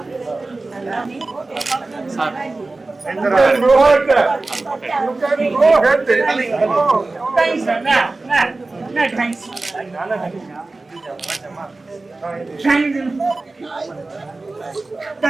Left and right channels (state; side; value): quieter; left; 3.3 dB